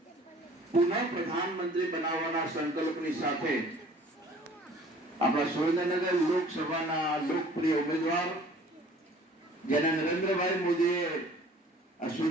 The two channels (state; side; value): normal; both; correlation 0.51